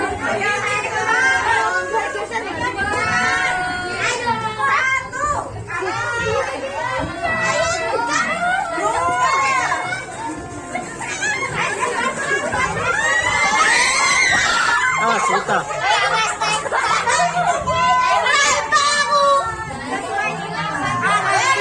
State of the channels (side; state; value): both; identical; correlation 1.00